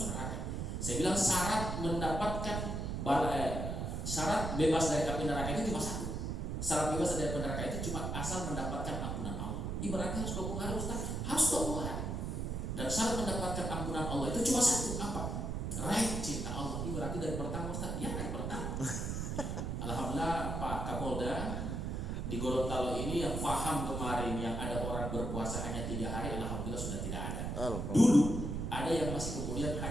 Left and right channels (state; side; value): noise; right; rumble, 2 dB below the sound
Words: neraka. Saya bilang syarat mendapatkan syarat bebas dari api neraka itu cuma satu. Syarat bebas dari api neraka itu cuma asal mendapatkan ampunan Allah. Ibaratnya harus 20 hari Ustaz, harus 20 hari. Dan syarat mendapatkan ampunan Allah itu cuma satu, apa? Raih cinta Allah. Ibaratnya dari pertama Ustaz, ya dari pertama. Alhamdulillah Pak Kapolda di Gorontalo ini yang paham kemarin yang ada orang berpuasa hanya 3 hari, alhamdulillah sudah tidak ada. Dulu ada yang masih kemudian